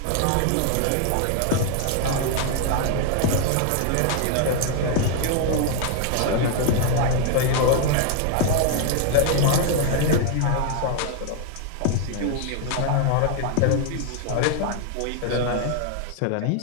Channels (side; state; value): both; different; correlation 0.00